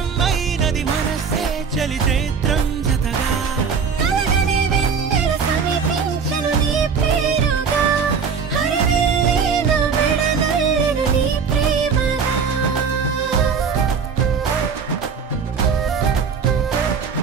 అయినది మనసే చలి చైత్రం జతగా కలగని వెన్నెల సమీపించను నీ పేరుగా హరివిల్లే నా మెడదల్లెను నీ ప్రేమగా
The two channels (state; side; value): quieter; left; 5.9 dB